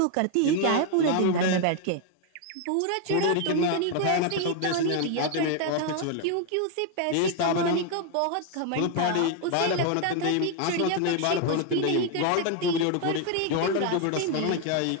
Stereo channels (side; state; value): both; different; correlation 0.00